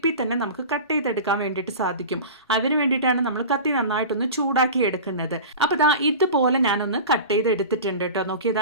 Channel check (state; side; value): inverted; both; correlation -0.32